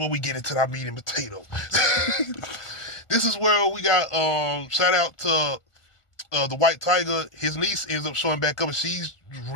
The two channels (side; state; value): right; late; 1.4 ms